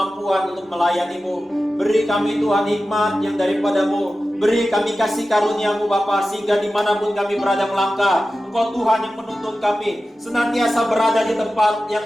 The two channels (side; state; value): both; normal; correlation 0.94